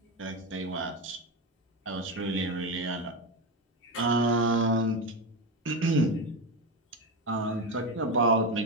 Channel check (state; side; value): normal; both; correlation 0.16